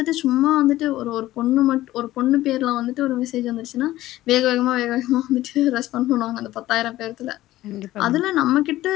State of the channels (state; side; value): quieter; right; 15.6 dB